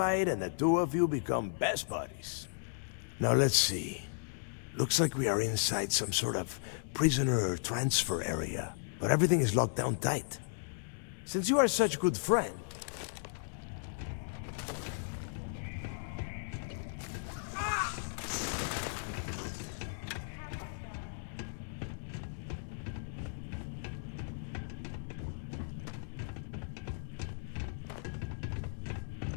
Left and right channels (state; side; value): silent; right; digital silence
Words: and the two of you become best buddies. Now let's see. Looks like we are inside some sort of prisoner transfer area, but everything is locked down tight. Since you are such a good friend, I got this. Keep her pinned. Ah! That's how it's done.